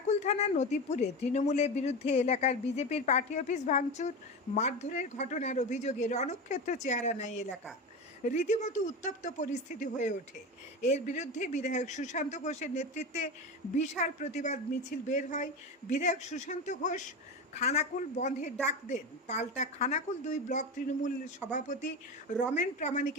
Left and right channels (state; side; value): normal; both; correlation 0.22